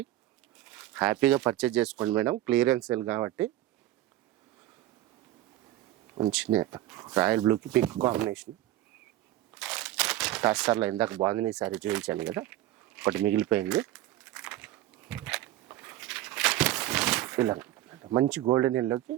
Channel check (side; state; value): left; quieter; 14.7 dB